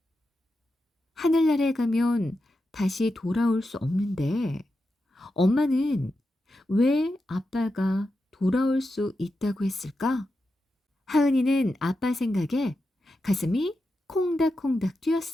하늘나라에 가면 다시 돌아올 수 없는데 엄마는 왜 아빠가 돌아올 수 있다고 했을까? 하은이는 아빠 생각에 가슴이 콩닥콩닥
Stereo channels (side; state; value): both; normal; correlation 0.89